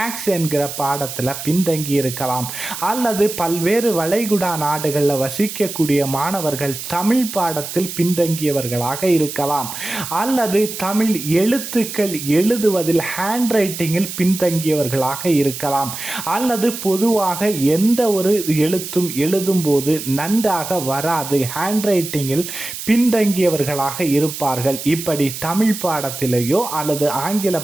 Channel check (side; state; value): right; noise; hiss, 8 dB below the sound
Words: என்கிற பாடத்தில் பின்தங்கி இருக்கலாம், அல்லது பல்வேறு வளைகுடா நாடுகளில் வசிக்கக்கூடிய மாணவர்கள் தமிழ் பாடத்தில் பின்தங்கியவர்களாக இருக்கலாம், அல்லது தமிழ் எழுத்துக்கள் எழுதுவதில் ஹேண்ட் ரைட்டிங்கில் பின்தங்கியவர்களாக இருக்கலாம், அல்லது பொதுவாக எந்த ஒரு எழுத்தும் எழுதும்போது நன்றாக வராது, ஹேண்ட் ரைட்டிங்கில் பின்தங்கியவர்களாக இருப்பார்கள். இப்படி தமிழ் பாடத்திலேயோ அல்லது ஆங்கில